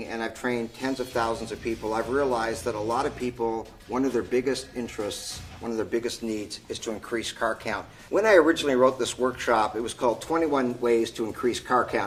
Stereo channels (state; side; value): identical; both; correlation 1.00